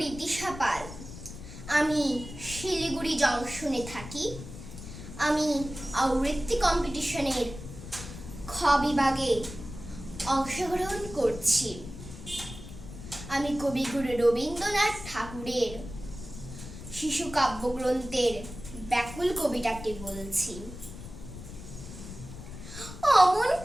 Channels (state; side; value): noise; left; rumble, 12 dB below the sound